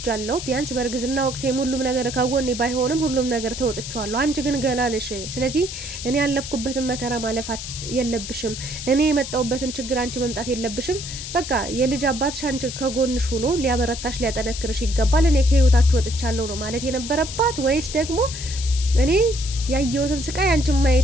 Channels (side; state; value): left; noise; hiss, 8 dB below the sound